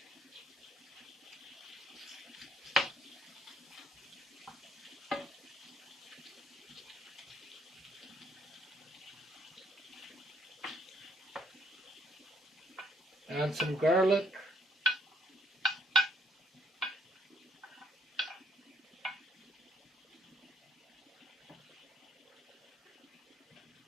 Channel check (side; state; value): both; normal; correlation 0.68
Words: Add some garlic.